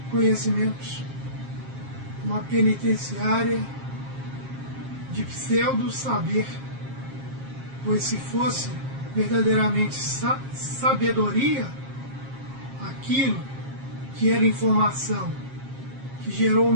conhecimentos, uma penitenciária de pseudo-saber, pois se fosse verdadeiramente sabedoria, aquilo que era informação, que gerou o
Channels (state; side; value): late; left; 7.5 ms